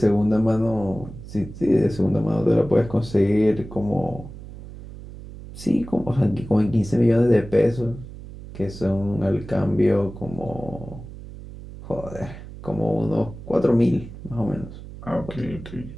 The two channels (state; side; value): noise; right; hum, 14 dB below the sound